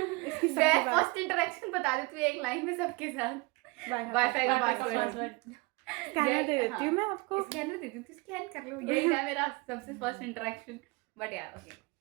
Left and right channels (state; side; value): quieter; left; 26.3 dB